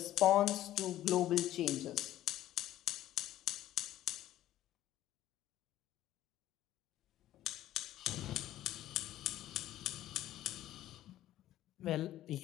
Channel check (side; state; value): right; quieter; 13.6 dB